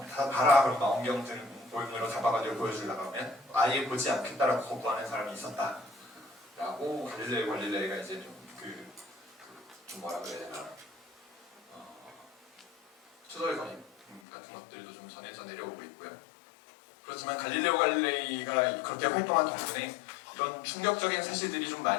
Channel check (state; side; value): drops out; right; at 14.2 s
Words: 다 봐라 그럼 망원경으로 잡아가지고 보여주려고 하면 아예 보지 않겠다라고 거부하는 사람이 있었다라고 갈릴레이가 이제 좀 뭐라 그래야 되나 추돌거림 같은 것들도 좀 전해져 내려오고 있고요. 그렇지만 갈릴레이가 그렇게 활동한 덕분에 이런 충격적인 사실들이 좀